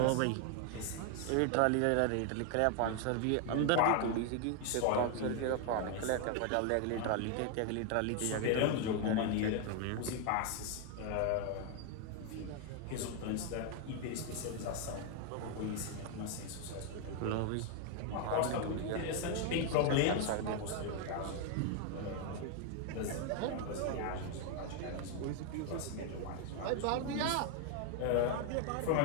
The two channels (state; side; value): different; both; correlation 0.01